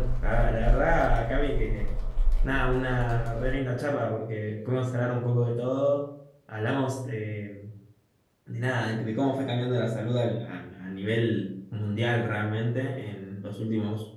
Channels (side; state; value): both; identical; correlation 1.00